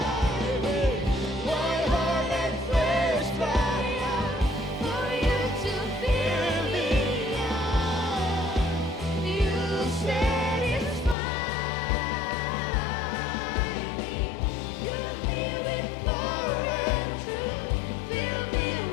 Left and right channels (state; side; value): drops out; right; at 11.2 s